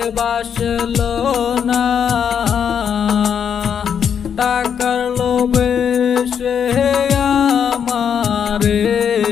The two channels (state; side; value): quieter; right; 7.8 dB